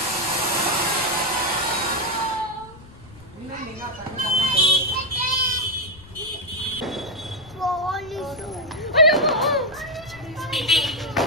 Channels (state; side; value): noise; left; rumble, 21 dB below the sound